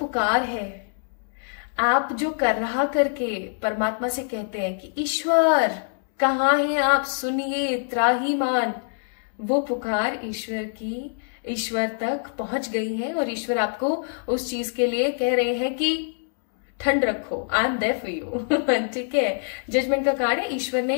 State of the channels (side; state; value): right; silent; 62 dB below the other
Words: है, आप जो कर रहा करके परमात्मा से कहते हैं कि ईश्वर कहाँ हैं आप, सुनिए, त्राहीमान, वो पुकार ईश्वर तक पहुंच गई है और ईश्वर आपको उस चीज के लिए कह रहे हैं कि ठंड रखो, I am there for you, ठीक है। जजमेंट का कार्ड है। ईश्वर